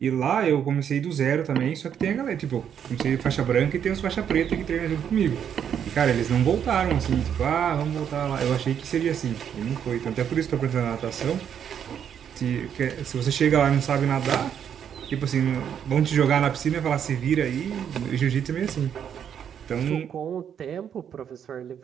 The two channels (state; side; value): quieter; left; 8.6 dB